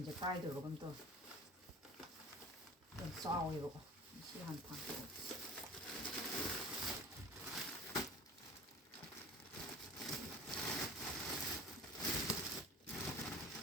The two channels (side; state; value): both; normal; correlation 0.40